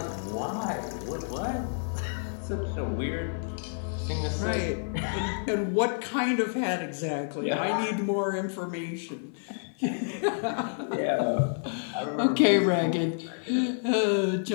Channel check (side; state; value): right; silent; 56 dB below the other